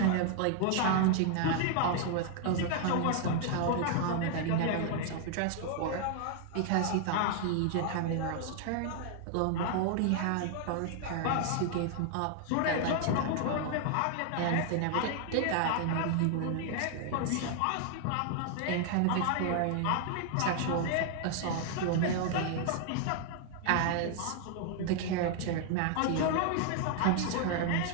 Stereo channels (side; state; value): both; different; correlation 0.00